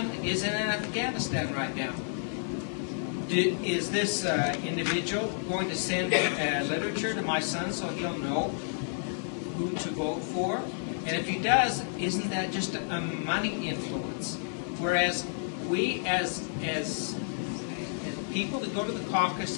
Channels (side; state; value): right; silent; digital silence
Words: is in Afghanistan right now. Is this individual going to send literature to my son so he'll know who to vote for? And if he does, isn't that just a money influence? Whereas we, as people that go to the